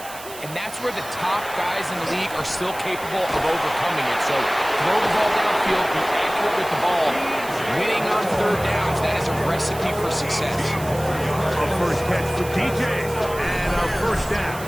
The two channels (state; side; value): noise; right; hiss, 15 dB below the sound